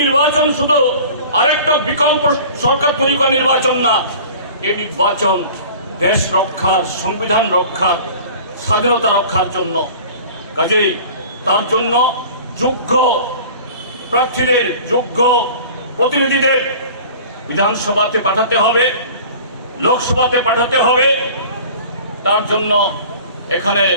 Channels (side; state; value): both; inverted; correlation -0.43